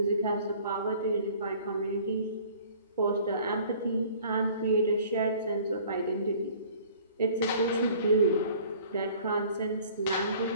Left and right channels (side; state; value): both; inverted; correlation -0.51